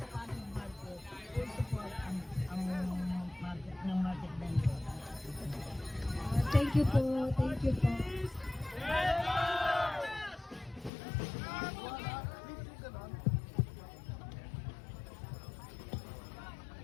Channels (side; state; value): right; drops out; at 10.9 s